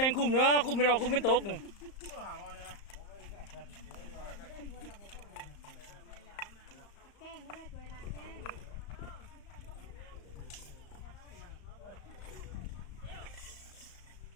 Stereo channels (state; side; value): late; right; 35 ms